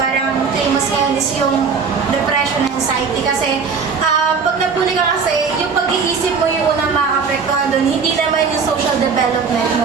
parang famous ngayon is yung depression and anxiety. Kasi, pag nabully ka kasi, yung pag-iisip mo yung unang makakapektuhan doon, hindi naman yung social development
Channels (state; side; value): quieter; left; 5.5 dB